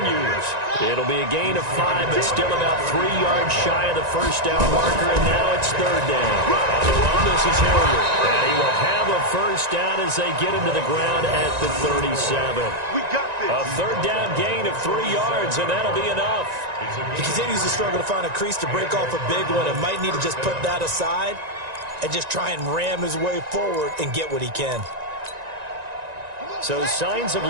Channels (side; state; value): left; late; 1.9 ms